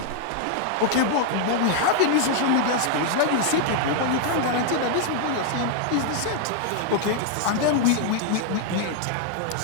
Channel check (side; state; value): both; different; correlation 0.00